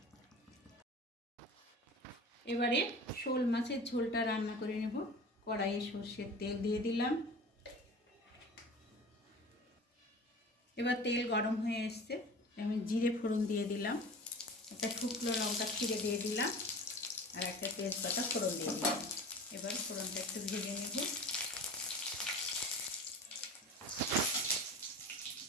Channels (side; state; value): both; normal; correlation 0.37